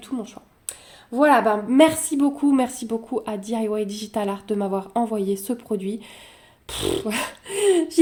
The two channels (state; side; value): identical; both; correlation 1.00